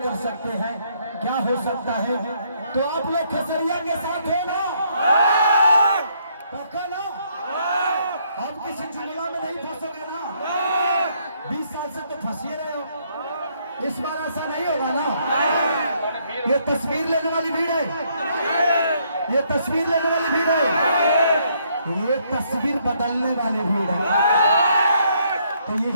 कर सकते हैं, क्या हो सकता है। तो आप लोग खेसरिया के साथ है ना? पक्का ना? आप किसी जुमला में नहीं फंसोगे ना? 20 साल से तो फंसे रहे हो, इस बार ऐसा नहीं होगा ना? ये तस्वीर लेने वाली भीड़ है, ये तस्वीर लेने वाली भीड़ है, ये तस्वीर बदलने वाली भीड़ है। तो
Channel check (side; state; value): both; inverted; correlation -0.70